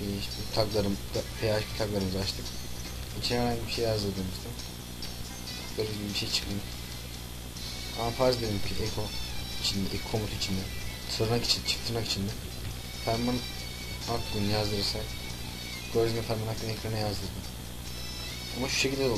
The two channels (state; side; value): identical; both; correlation 1.00